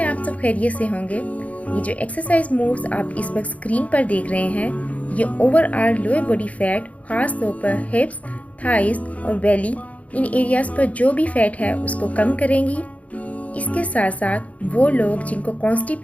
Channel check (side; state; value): right; late; 0.068 ms